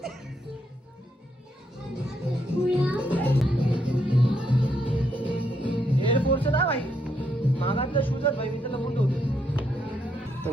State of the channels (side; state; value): both; normal; correlation 0.76